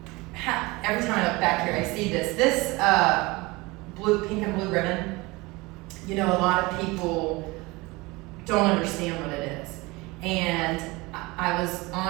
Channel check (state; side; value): quieter; left; 23.3 dB